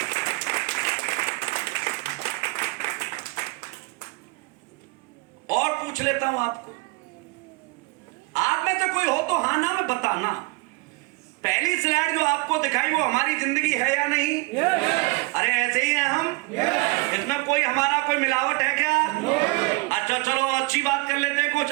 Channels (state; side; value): quieter; left; 25.8 dB